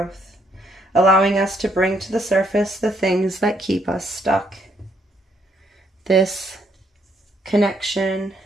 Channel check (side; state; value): both; normal; correlation 0.71